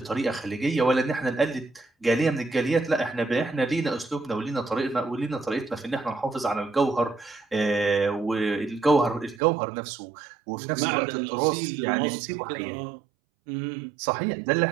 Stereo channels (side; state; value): left; drops out; at 9.4 s